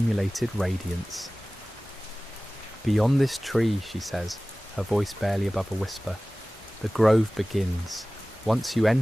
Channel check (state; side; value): normal; both; correlation 0.98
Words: radiance. Beyond this tree, she says, her voice barely above a whisper, the grove begins. Once you